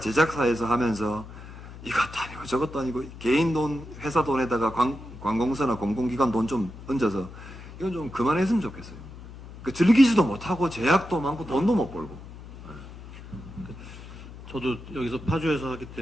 하면서 이것도 아니고 저것도 아니고 개인 돈, 회사 돈에다가 관공서나 공공기관 돈 좀 얹어서 이건 좀 그만했으면 좋겠어요. 그 즐기지도 못하고 제약도 많고 돈도 못 벌고. 저도 여기서 파주에서 하기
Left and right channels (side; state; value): left; noise; hum, 15 dB below the sound